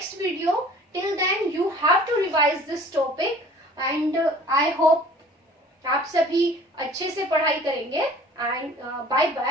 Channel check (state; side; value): normal; both; correlation 0.49